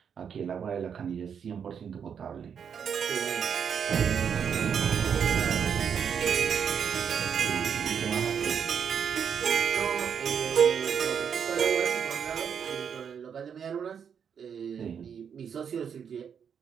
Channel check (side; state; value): left; quieter; 7.4 dB